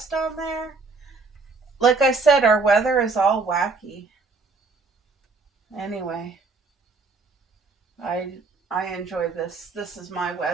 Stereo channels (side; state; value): left; quieter; 4.0 dB